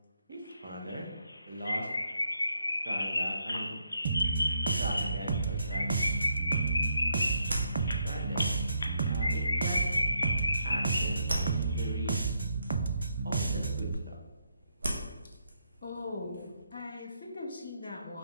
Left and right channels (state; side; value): inverted; both; correlation -0.77